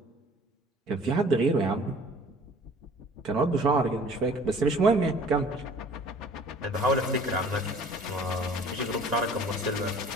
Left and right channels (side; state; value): both; normal; correlation 0.50